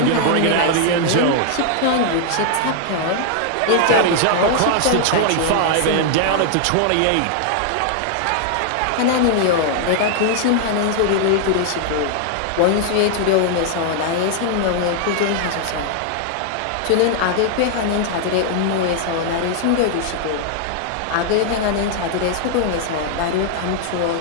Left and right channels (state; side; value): different; both; correlation 0.00